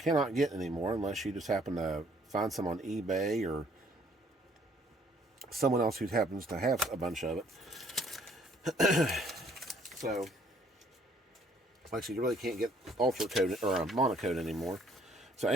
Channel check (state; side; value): normal; both; correlation 0.63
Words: get anymore unless you just happen to find some on eBay or someone else who happens to have a bunch of it. So, like I said, you really can't get Ultracote or monocoat anymore. So